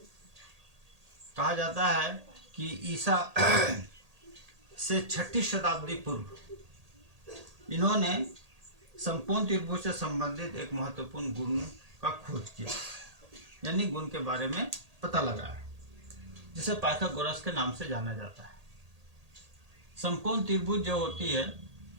कहा जाता है कि ईसा से 6ठी शताब्दी पूर्व इन्होंने समकोण त्रिभुज से संबंधित एक महत्वपूर्ण गुण का खोज किया, यानी गुण के बारे में पता लगाया, जिसे पाइथागोरस के नाम से जाना जाता है। समकोण त्रिभुज जो होती है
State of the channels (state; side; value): late; left; 1.8 ms